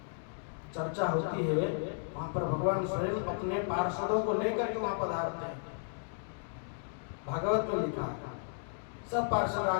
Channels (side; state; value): right; silent; digital silence